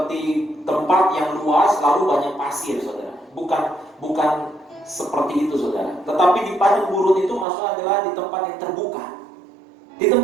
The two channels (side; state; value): left; drops out; at 7.5 s